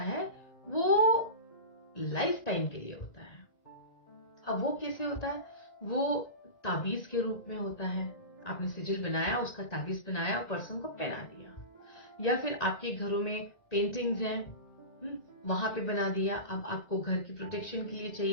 वो लाइफ टाइम के लिए होता है। अब वो कैसे होता है, वो ताबीज के रूप में होता है। आपने सिजिल बनाया, उसका ताबीज बनाया और पर्सन को पहना दिया, या फिर आपके घरों में पेंटिंग्स हैं, वहां पे बना दिया। अब आपको घर की प्रोटेक्शन के लिए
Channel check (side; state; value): right; late; 1.9 ms